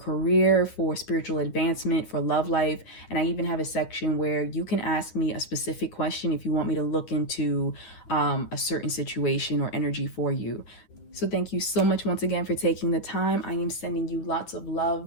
for spiritual advancement, for love life. And I even have a section where you can ask me a specific question if you want me to look into a certain situation or energy for you. So thank you so much once again for taking the time. I am sending you lots of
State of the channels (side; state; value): right; late; 10 ms